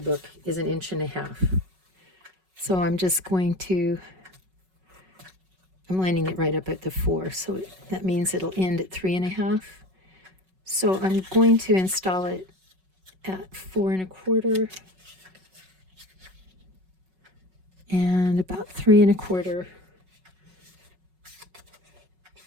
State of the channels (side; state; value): left; late; 5.4 ms